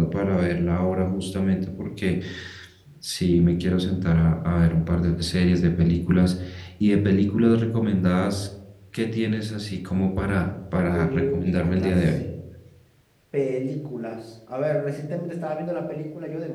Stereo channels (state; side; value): identical; both; correlation 1.00